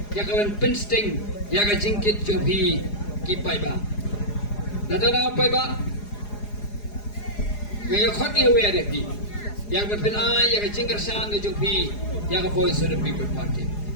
ya ka ban pinsting ya ka jingkit jobi ki pai ba nadana pai ba Ngayon khot ni we ada pi. Yang berpenai yang jingkar sang ke jopi yang voice of the people party.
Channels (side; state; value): right; late; 4.8 ms